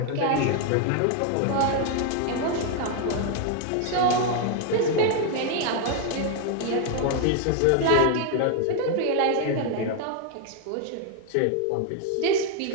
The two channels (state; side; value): different; both; correlation 0.00